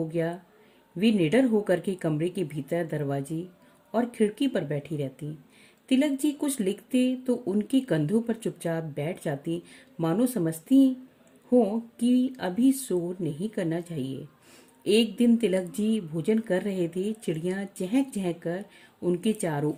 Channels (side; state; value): both; identical; correlation 1.00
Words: गया। वे निडर होकर के कमरे के भीतर दरवाजे और खिड़की पर बैठी रहती। तिलक जी कुछ लिखते तो उनके कंधों पर चुपचाप बैठ जाती, मानो समझती हो कि अभी शोर नहीं करना चाहिए। एक दिन तिलक जी भोजन कर रहे थे। चिड़ियां चहक चहक कर उनके चारों